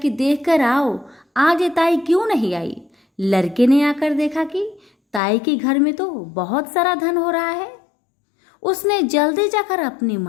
देखकर आओ, आज ताई क्यों नहीं आई। लड़के ने आकर देखा कि ताई के घर में तो बहुत सारा धन हो रहा है। उसने जल्दी जाकर अपनी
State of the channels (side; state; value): right; drops out; at 5.2 s